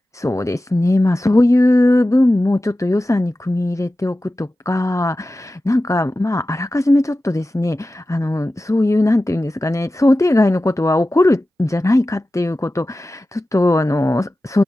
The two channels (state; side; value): normal; both; correlation 0.94